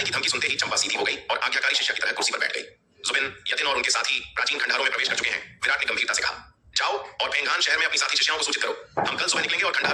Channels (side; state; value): both; identical; correlation 1.00